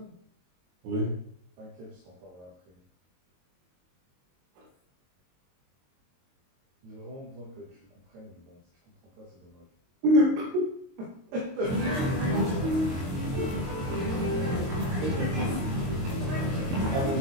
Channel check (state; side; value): late; left; 22 ms